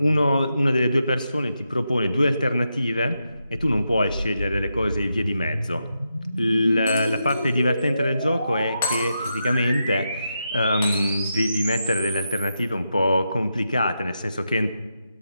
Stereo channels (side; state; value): both; inverted; correlation -0.86